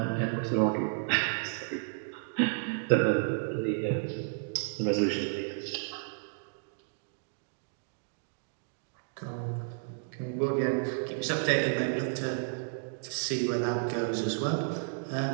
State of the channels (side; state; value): left; silent; digital silence